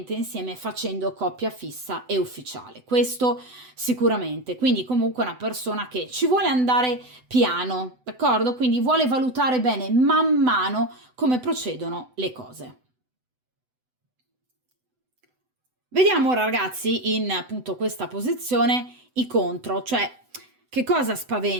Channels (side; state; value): left; late; 7.9 ms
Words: insieme facendo coppia fissa e ufficiale. Questo sicuramente. Quindi comunque è una persona che ci vuole andare piano, d'accordo? Quindi vuole valutare bene man mano come procedono le cose. Vediamo ora ragazzi in appunto questa posizione i contro, cioè che cosa